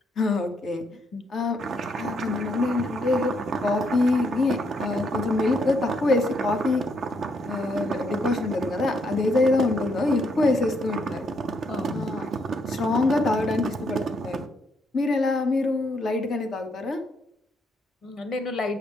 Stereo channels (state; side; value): normal; both; correlation 0.74